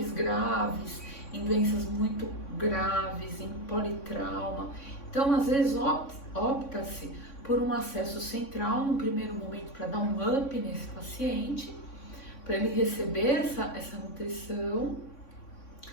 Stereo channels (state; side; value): late; right; 3.6 ms